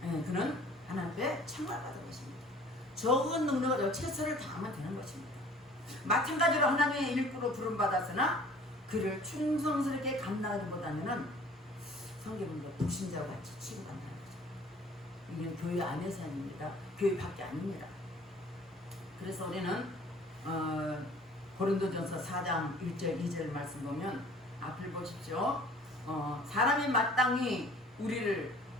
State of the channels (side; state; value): both; normal; correlation 0.51